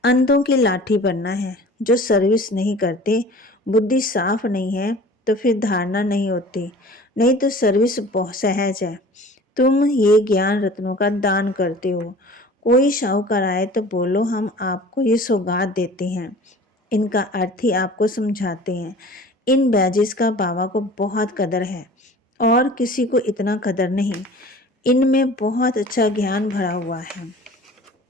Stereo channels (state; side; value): normal; both; correlation 0.44